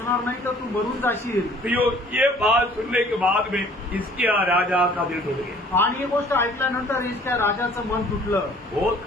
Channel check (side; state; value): both; normal; correlation 0.54